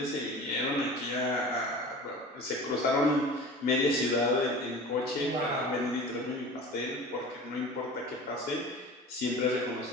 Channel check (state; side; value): normal; both; correlation 0.38